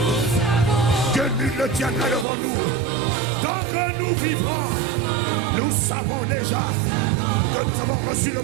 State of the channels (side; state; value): left; drops out; at 2.2 s